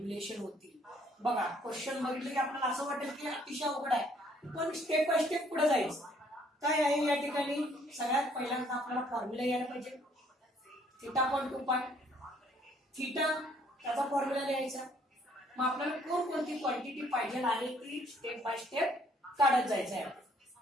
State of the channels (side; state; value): both; normal; correlation 0.63